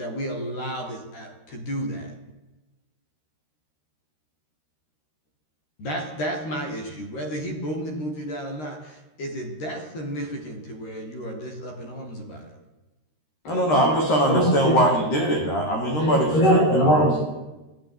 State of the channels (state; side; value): late; right; 13 ms